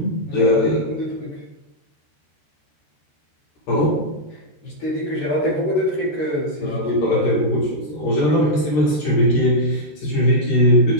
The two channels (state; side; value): late; right; 13 ms